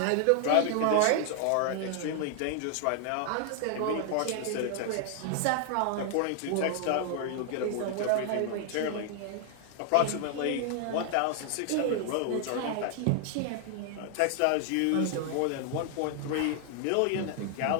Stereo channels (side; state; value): both; different; correlation 0.00